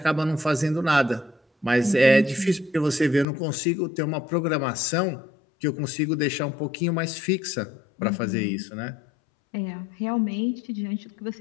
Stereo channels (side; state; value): right; drops out; at 3.2 s